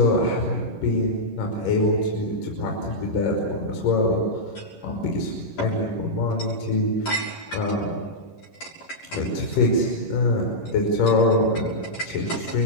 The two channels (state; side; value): late; right; 11 ms